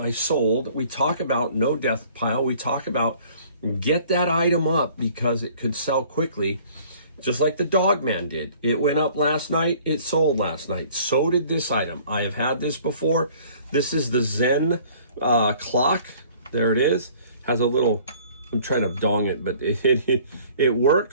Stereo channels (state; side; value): inverted; both; correlation -0.53